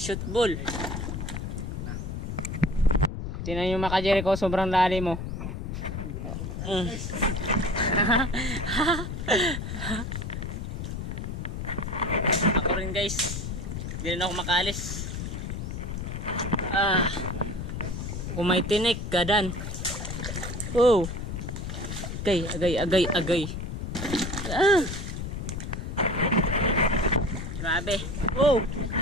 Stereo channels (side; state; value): left; noise; rumble, 5 dB below the sound